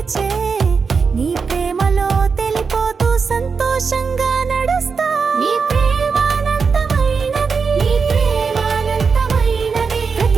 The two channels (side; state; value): left; quieter; 5.3 dB